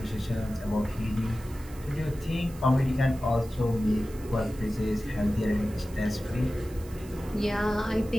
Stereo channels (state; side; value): noise; right; hiss, 21 dB below the sound